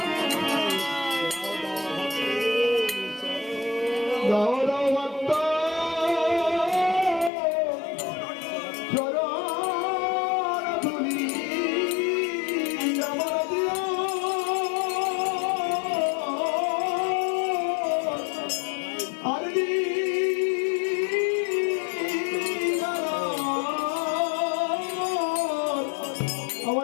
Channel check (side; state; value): right; drops out; at 7.3 s